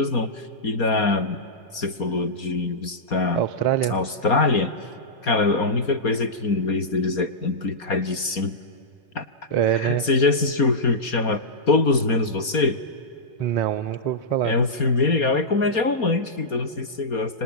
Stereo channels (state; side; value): late; right; 4.2 ms